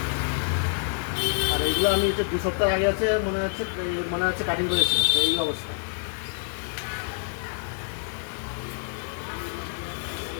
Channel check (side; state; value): right; silent; digital silence